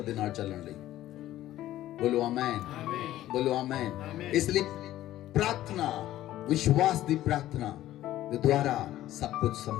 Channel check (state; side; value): quieter; right; 14.0 dB